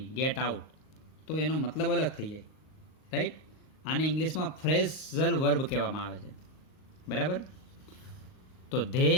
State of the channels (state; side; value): late; right; 38 ms